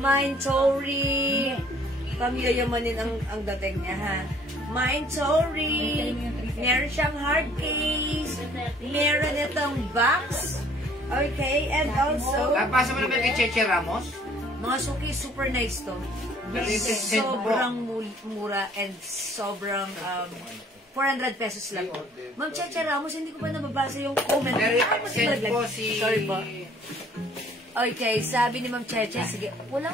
Tory. Pamiyayamanin ang dating niya, ha. Mine Tory. Meron siyang hard case. Meron itong box. Okay, and also... Pasa mo naman kay Cheche Ramos? Mga suki, super nice to. Sobrang mura and sobrang 400 pesos lang po. Ma'am Cheche Ramos, hindi ko pa nababasa yung comment. Send po si... Sorry po. Okay, sabi ni Ma'am Cheche. Sige,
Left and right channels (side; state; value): both; normal; correlation 0.58